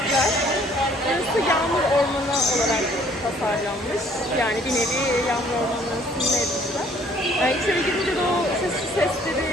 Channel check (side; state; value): both; normal; correlation 0.59